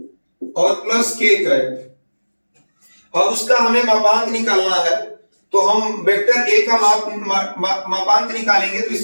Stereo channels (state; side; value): inverted; both; correlation -1.00